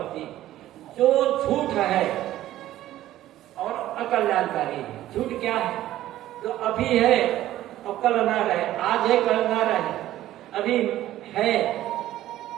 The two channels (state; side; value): quieter; left; 14.0 dB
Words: जो झूठ है और अकल्याणकारी है। झूठ क्या है? जो अभी है और कल ना रहे, आज है कल ना रहे, अभी है